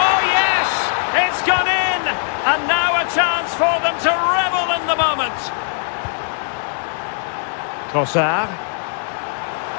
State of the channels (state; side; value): silent; right; 62 dB below the other